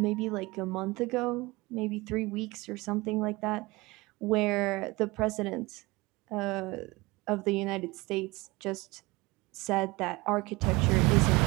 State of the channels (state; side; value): quieter; left; 22.6 dB